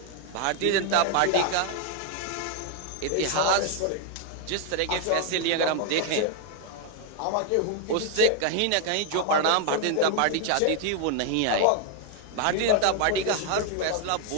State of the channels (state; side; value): different; both; correlation 0.00